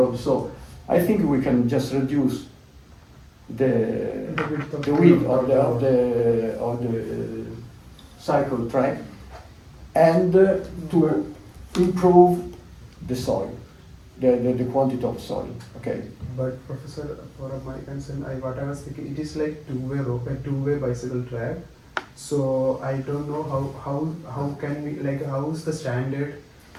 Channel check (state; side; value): identical; both; correlation 1.00